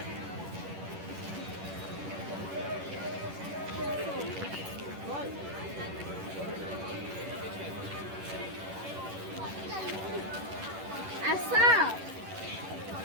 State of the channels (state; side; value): late; left; 11 ms